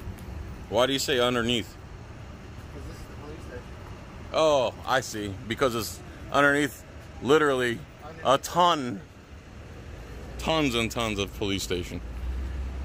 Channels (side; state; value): both; identical; correlation 1.00